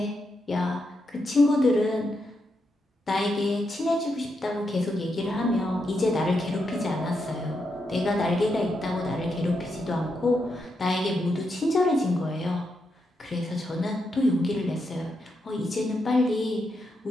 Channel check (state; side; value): normal; both; correlation 0.83